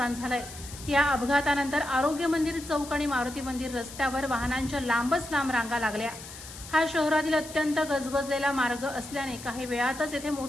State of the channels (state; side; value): noise; left; hiss, 14 dB below the sound